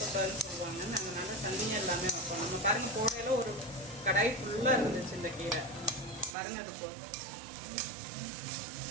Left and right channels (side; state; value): left; drops out; at 6.4 s